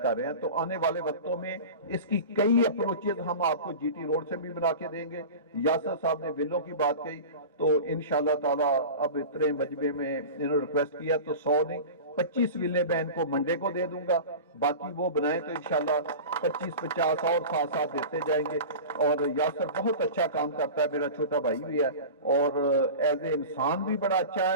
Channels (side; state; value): both; inverted; correlation -0.33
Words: रहे हैं। तो आने वाले वक्तों में इसकी कई अप्रोचेज हम आपको जीटी रोड से भी बना के देंगे। यासर साहब ने विलों की बात कही, तो इंशाल्लाह ताला अब इतने मजबे में इन्होंने रिक्वेस्ट किया तो 100 नहीं 25 विले मैं इनको मंडे को दे दूंगा, बाकी वो बनाए तो इंशाल्लाह 25-50 और साथ साथ देते जाएंगे। और यासर बहुत अच्छा काम करता है, मेरा छोटा भाई भी है और एज ए इंसान भी बड़ा अच्छा